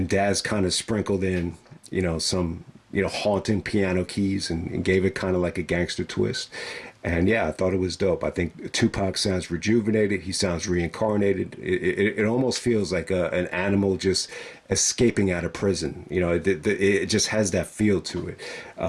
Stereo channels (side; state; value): both; identical; correlation 1.00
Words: Daz kind of sprinkled in some haunting piano keys and gave it kind of like a gangster twist. And yeah, I thought it was dope. I think Tupac sounds rejuvenated. He sounds reincarnated. It almost feels like an animal just escaping out of prison. It just has that feel to it.